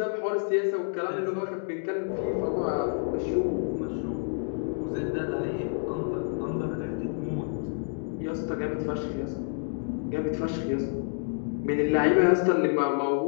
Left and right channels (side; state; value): right; silent; digital silence